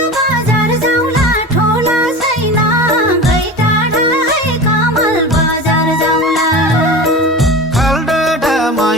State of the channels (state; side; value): normal; both; correlation 0.31